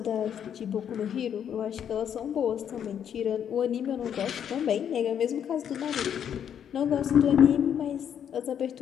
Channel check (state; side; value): quieter; right; 8.8 dB